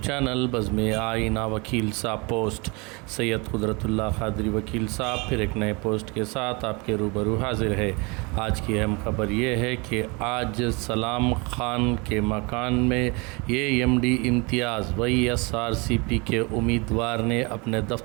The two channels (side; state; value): left; quieter; 28.7 dB